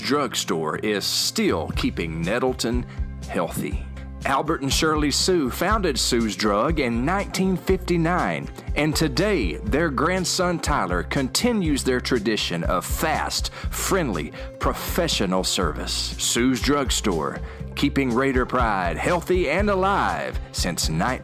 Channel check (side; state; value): both; identical; correlation 1.00